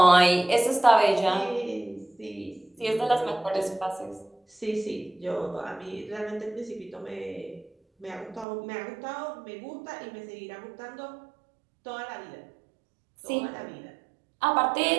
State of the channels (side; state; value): left; drops out; at 8.5 s